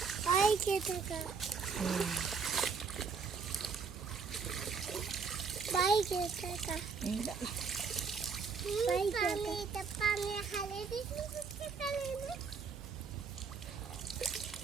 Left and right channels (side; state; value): left; quieter; 5.4 dB